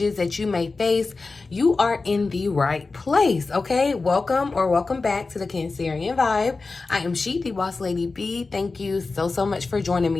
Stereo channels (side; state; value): right; quieter; 3.9 dB